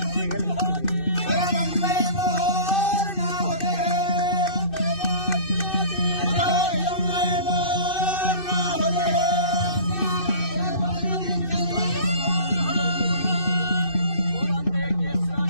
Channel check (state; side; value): late; right; 2.6 ms